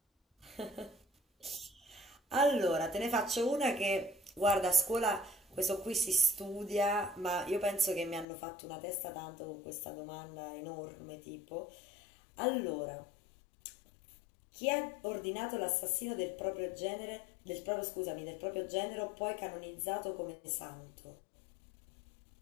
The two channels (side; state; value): right; drops out; at 8.2 s